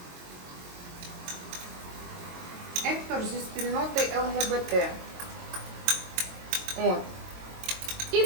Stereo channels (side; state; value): left; late; 22 ms